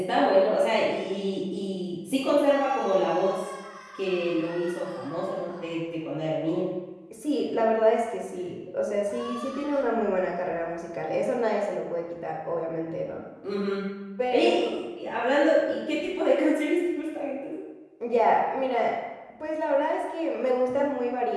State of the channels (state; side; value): identical; both; correlation 1.00